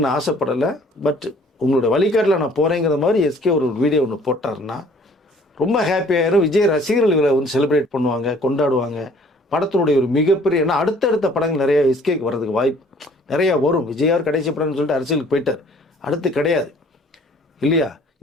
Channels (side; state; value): both; normal; correlation 0.56